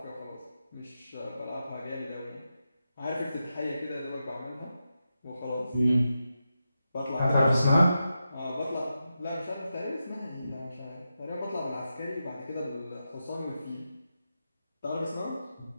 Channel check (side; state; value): both; inverted; correlation -0.89